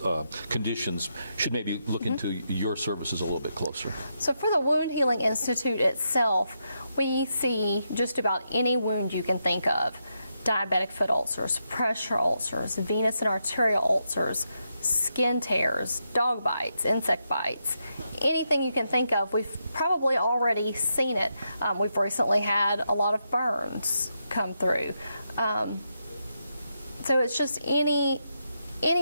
conditions should maybe look into your services a little bit closer. So for the Wound Healing Institute itself, we see just about any wound you can think of. Diabetic foot ulcers, pressure ulcers, venous and arterial ulcers, skin tears, dog bites, insect bites, anything you can think of. We've probably already seen it. We've recently had a lot of burns come through. So it's just any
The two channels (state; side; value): inverted; both; correlation -0.83